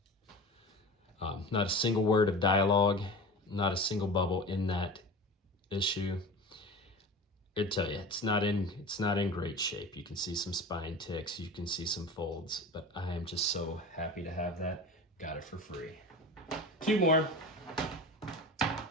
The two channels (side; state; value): both; normal; correlation 0.33